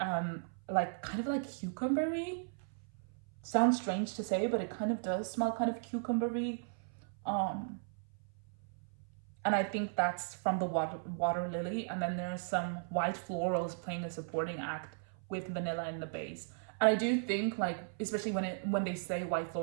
like kind of like cucumbery. Sounds strange to say, but it kind of does smell kind of cucumbery. And I think that's from the water lily. And then there's some white florals playing a supporting act with vanilla in the base. And I do think, like, especially when they say white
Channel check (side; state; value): left; silent; 54 dB below the other